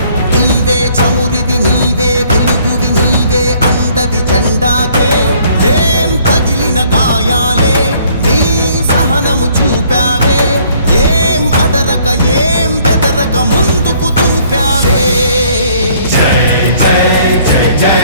నీవే చమురివి నీవే వెలుగువి నీవే అండవి జెండాకే. ఏం తగిలిన గాయాలే నీ సహనము చూపావే, ఏం అదరక ఏం బెదరక ముందుకు దూకావే. జై జై జై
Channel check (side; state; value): both; inverted; correlation -0.61